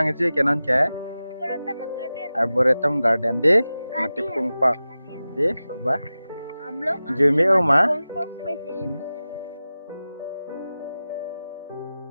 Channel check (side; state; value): both; inverted; correlation -0.95